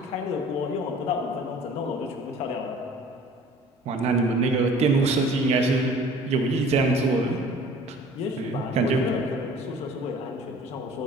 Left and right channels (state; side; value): normal; both; correlation 0.49